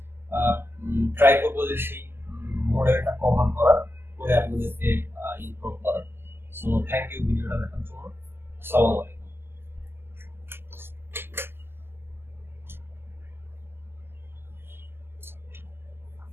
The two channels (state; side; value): late; left; 0.11 ms